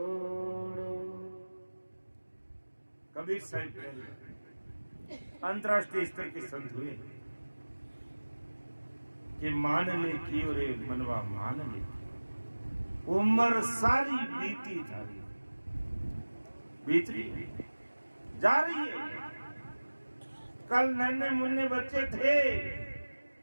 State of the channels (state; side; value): inverted; both; correlation -1.00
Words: रो। कबीर साहिब अंतर्राष्ट्रीय स्तर के संत हुए कि मान ले की रे मनवा मान ले, उम्र सारी बीती थारी, बीत रही है, जा रही है। कल नन्हे मुन्ने बच्चे थे